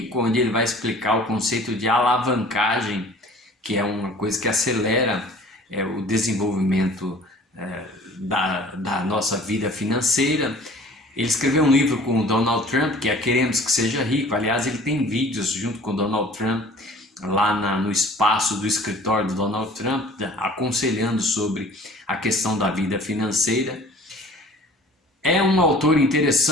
onde ele vai explicar o conceito de alavancagem, que é uma coisa que acelera o desenvolvimento da nossa vida financeira. Ele escreveu um livro com o Donald Trump, que é Queremos que Seja Rico. Aliás, ele tem vídeos junto com o Donald Trump lá no espaço do escritório do Donald Trump, aconselhando sobre a questão da vida financeira. É um autor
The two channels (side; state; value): both; normal; correlation 0.48